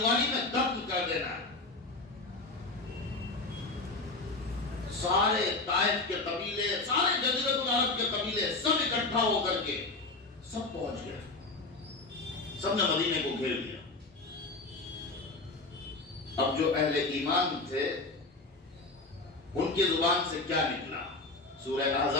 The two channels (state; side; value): quieter; right; 3.3 dB